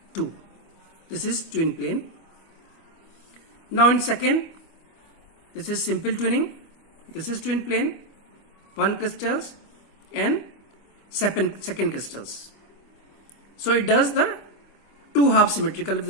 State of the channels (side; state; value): right; late; 25 ms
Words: two. This is twin plane. Now in second, this is simple twinning. This is twin plane, one crystals and second crystals. So it does the two half symmetrical with